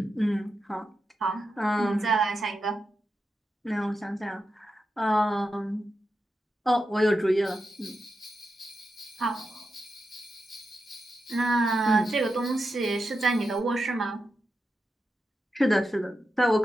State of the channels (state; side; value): normal; both; correlation 0.87